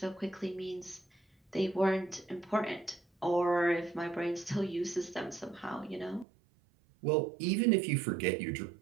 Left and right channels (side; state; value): left; drops out; at 6.2 s